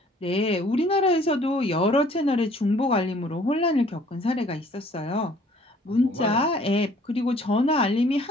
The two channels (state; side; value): normal; both; correlation 0.57